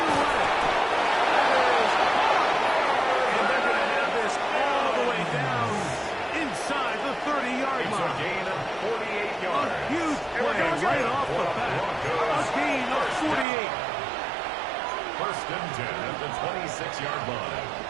away. And they're going to have this all the way down inside the 30-yard line. It's a gain of 48 yards. A huge play right off the bat. A gain of 48. First and 10 at the 26-yard line.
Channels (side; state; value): left; drops out; at 13.5 s